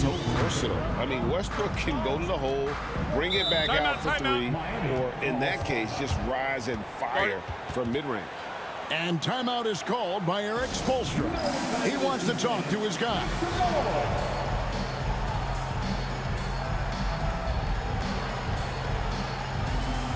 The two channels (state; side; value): identical; both; correlation 1.00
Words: so versatile. I mean, Westbrook can go to the hole, bring it back out for 3, or in that case, just rise and fire from mid-range. And timeout is called by Eric Spoelstra. He wants to talk to his guy.